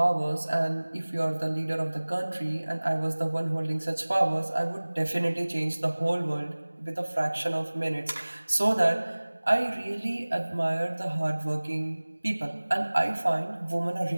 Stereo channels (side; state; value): both; inverted; correlation -1.00